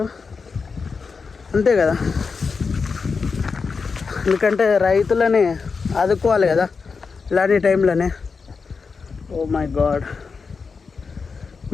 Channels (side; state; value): right; quieter; 5.0 dB